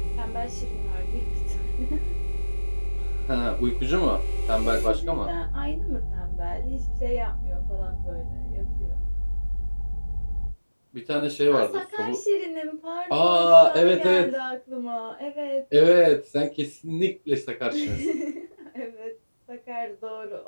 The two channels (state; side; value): inverted; both; correlation -1.00